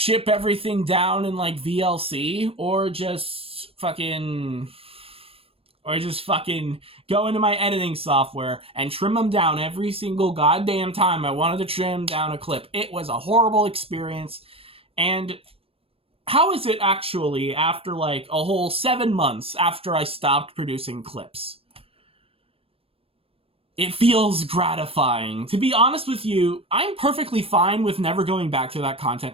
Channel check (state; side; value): late; left; 0.28 ms